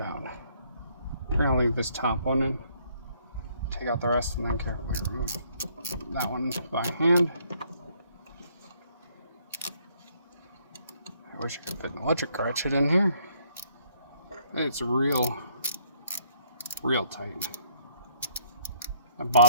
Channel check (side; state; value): both; inverted; correlation -0.67